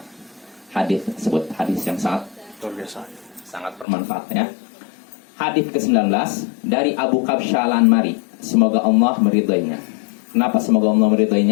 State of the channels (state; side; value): drops out; right; at 3.9 s